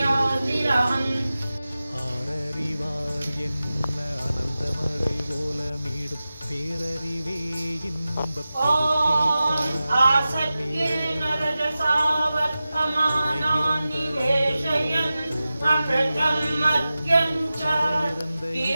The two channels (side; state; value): both; inverted; correlation -0.95